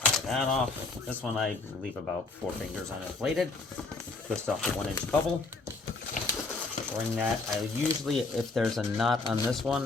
Tie that off. This one I leave about 4 fingers uninflated. Twist off the 1 inch bubble. Bring that. I usually, if there's a knot on this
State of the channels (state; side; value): quieter; right; 3.5 dB